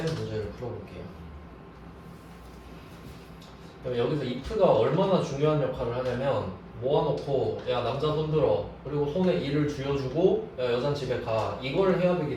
풀어볼게요. 그럼 여기서 if가 얼마나 중요한 역할을 하냐면 모아놓고 야 남자 손 들어 그리고 손에 일을 쥐어주고 야 여잔 집에 가 이걸 해야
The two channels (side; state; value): both; identical; correlation 1.00